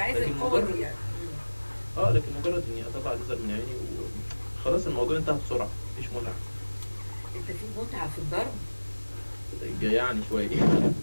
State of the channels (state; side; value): inverted; both; correlation -1.00